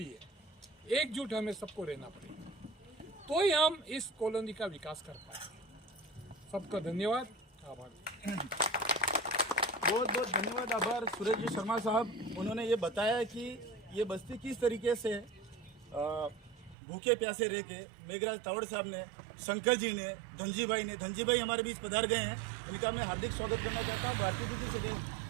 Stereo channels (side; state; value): left; drops out; at 16.8 s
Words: एकजुट हमें सबको रहना पड़ेगा, तो ही हम इस कॉलोनी का विकास कर पाएंगे। सबका धन्यवाद, आभार। बहुत बहुत धन्यवाद, आभार सूरज जी शर्मा साहब। उन्होंने ये बताया कि ये बस्ती किस तरीके से भूखे प्यासे रह के मेघराज तावड़ साहब ने, शंकर जी ने, धनजी भाई हमारे बीच पधार गए हैं, इनका मैं हार्दिक स्वागत करना चाहता हूँ। भारतीय दीदी से